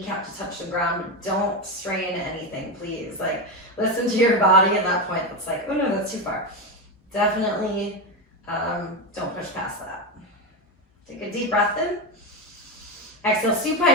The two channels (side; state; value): both; normal; correlation 0.14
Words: to touch the ground. Don't strain anything, please. Like, listen to your body at that point. That's like, oh no, that's too far. Definitely don't push past that. Take a deep breath in. Exhale,